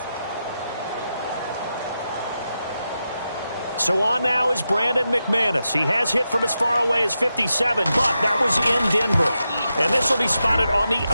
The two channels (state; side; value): inverted; both; correlation -0.88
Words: So on now is Brandon McManus. He has hit from as far away as 57, but that was in Denver. And this will be spotted on the